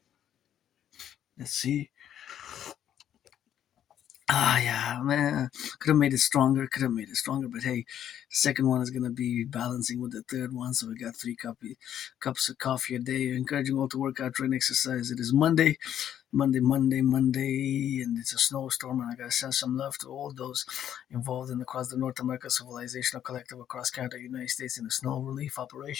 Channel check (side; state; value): right; quieter; 10.3 dB